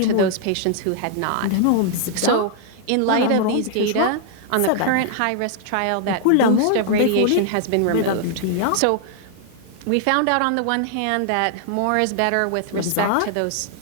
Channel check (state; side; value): different; both; correlation 0.00